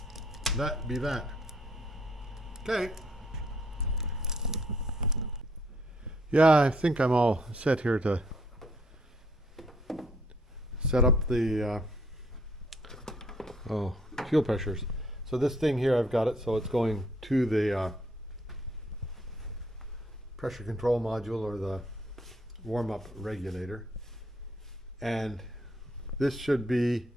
that be that. Okay. Yeah, I think I'm all set here to set up the fuel pressures. So this thing here, I've got it, so it's going to the pressure control module, or the warm-up regulator. And this should be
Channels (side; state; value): both; normal; correlation 0.67